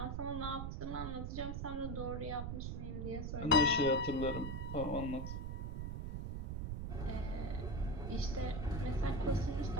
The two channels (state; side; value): noise; right; rumble, 3 dB below the sound